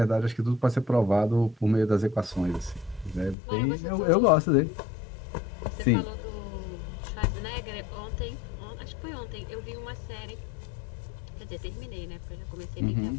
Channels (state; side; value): drops out; right; at 3.4 s